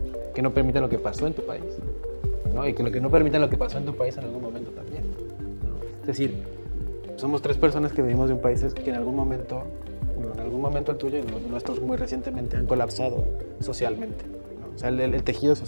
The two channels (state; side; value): inverted; both; correlation -1.00